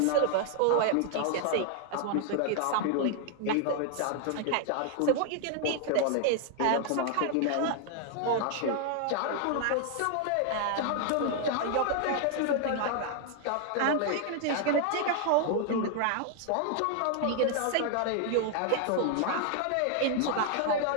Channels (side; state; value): both; different; correlation 0.00